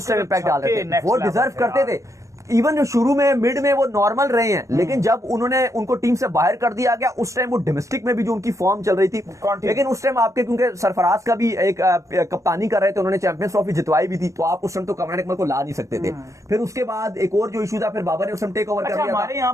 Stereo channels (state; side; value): late; left; 0.15 ms